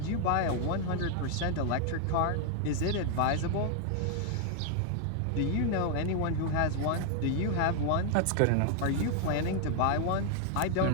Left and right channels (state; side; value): different; both; correlation 0.00